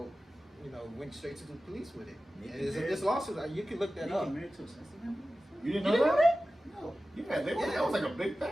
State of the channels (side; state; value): both; normal; correlation 0.95